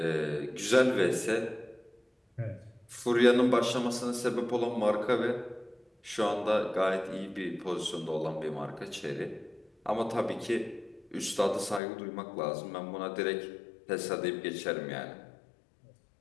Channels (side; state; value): right; drops out; at 11.8 s